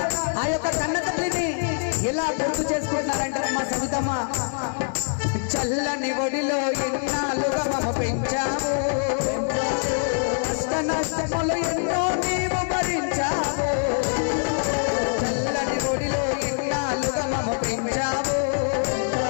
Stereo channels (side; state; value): right; silent; digital silence